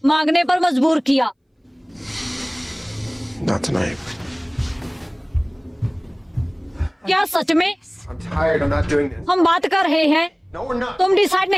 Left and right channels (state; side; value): identical; both; correlation 1.00